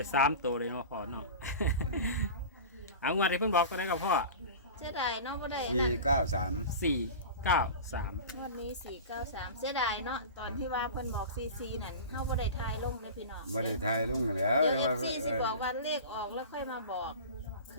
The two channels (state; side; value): inverted; both; correlation -0.33